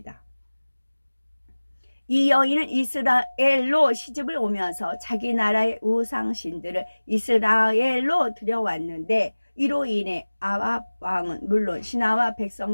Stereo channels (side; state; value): both; inverted; correlation -1.00